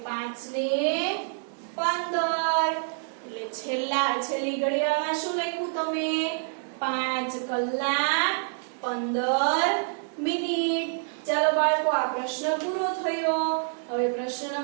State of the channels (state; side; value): silent; left; digital silence